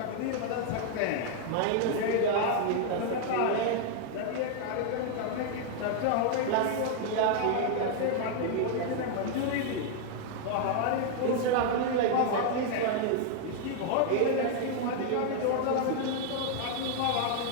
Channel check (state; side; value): different; both; correlation 0.00